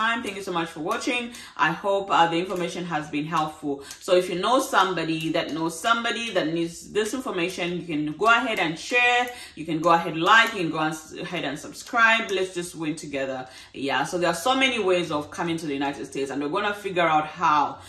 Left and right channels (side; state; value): both; identical; correlation 1.00